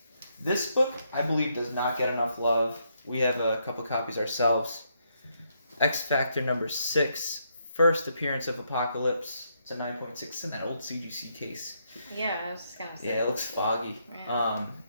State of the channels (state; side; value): inverted; both; correlation -0.76